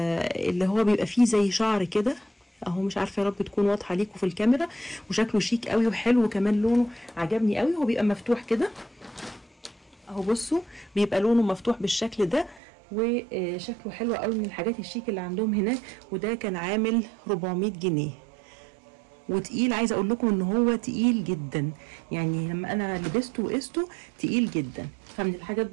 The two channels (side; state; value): left; drops out; at 12.6 s